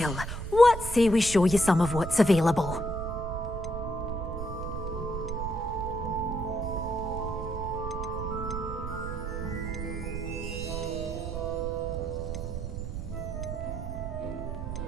what say we show you some of what's available?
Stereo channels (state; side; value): noise; right; rumble, 6 dB below the sound